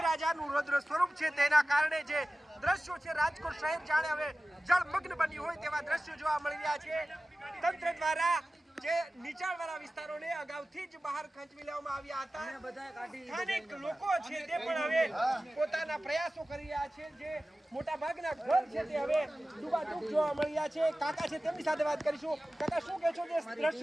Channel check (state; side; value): normal; both; correlation 0.96